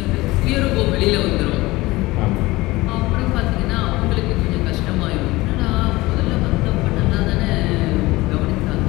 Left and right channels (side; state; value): right; quieter; 20.0 dB